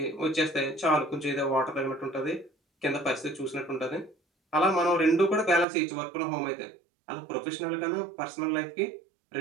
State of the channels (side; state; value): left; drops out; at 5.7 s